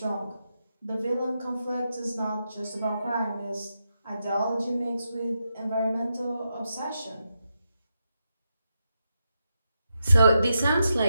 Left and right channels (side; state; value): both; inverted; correlation -0.85